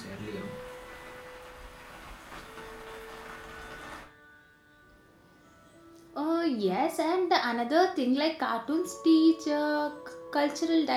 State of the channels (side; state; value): both; identical; correlation 1.00